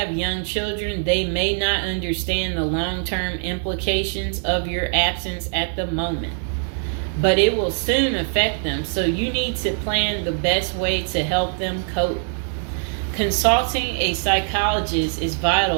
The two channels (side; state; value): left; silent; 64 dB below the other